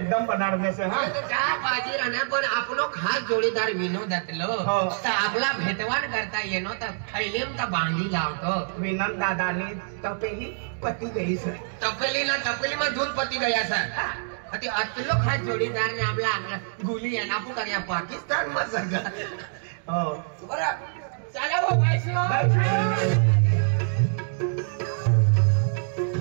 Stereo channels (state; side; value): silent; left; digital silence